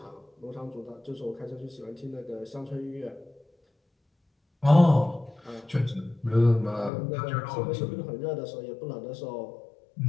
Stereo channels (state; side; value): drops out; right; at 6.9 s